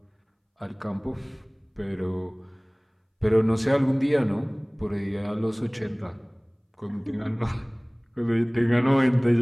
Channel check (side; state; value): both; identical; correlation 1.00